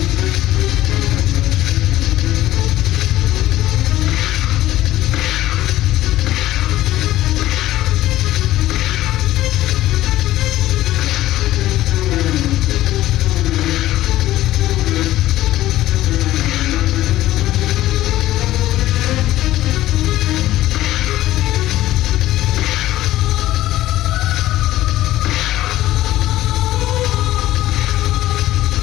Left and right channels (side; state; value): right; quieter; 15.1 dB